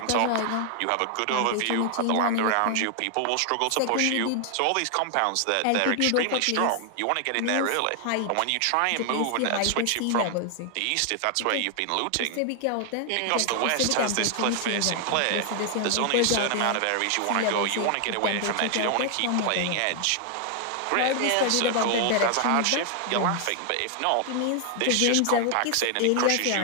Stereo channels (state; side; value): different; both; correlation 0.00